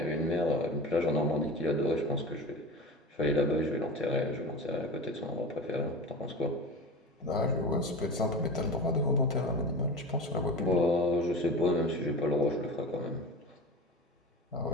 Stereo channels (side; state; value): both; normal; correlation 0.31